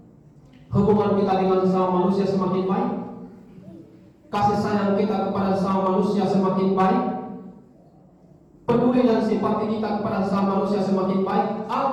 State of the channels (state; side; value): identical; both; correlation 1.00